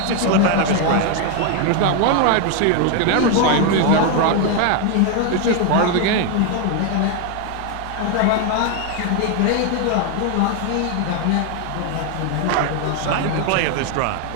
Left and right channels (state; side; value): different; both; correlation 0.01